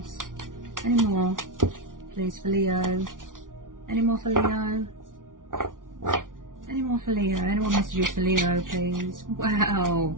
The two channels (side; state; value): left; late; 0.88 ms